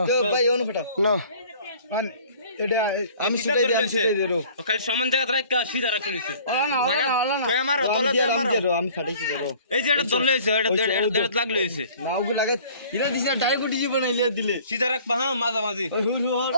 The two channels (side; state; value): both; inverted; correlation -0.51